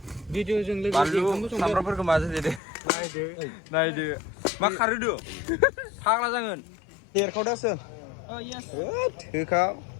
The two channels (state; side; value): drops out; right; at 2.6 s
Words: भिडिअजों लोगोसे बानलु सामब्रामफोरखौ माजों देदो नायदो मा खारहोदो फाग्ला जागोन देरखावदासो थोखाव